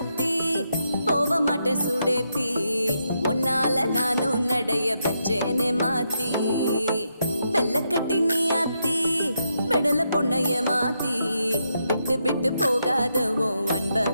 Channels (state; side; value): inverted; both; correlation -0.81